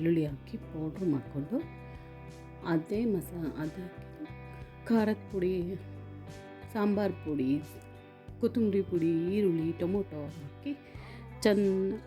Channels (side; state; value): both; identical; correlation 1.00